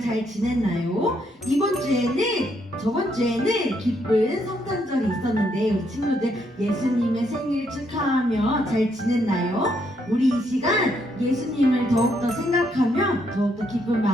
잘 지냈나요? 저번 주에는 기쁜 성탄절이 있었는데 우리 친구들 예수님의 생일 축하하며 잘 지냈나요? 우리 이 시간 예수님을 더욱더 생각하며 더욱더 기쁜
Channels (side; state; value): both; normal; correlation 0.74